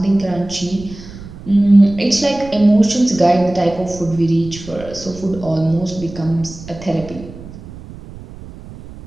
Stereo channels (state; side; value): noise; right; rumble, 16 dB below the sound